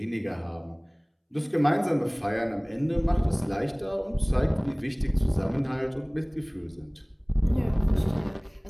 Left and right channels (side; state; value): both; identical; correlation 1.00